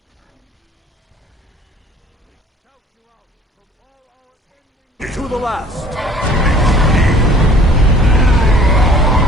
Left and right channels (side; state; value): both; normal; correlation 0.53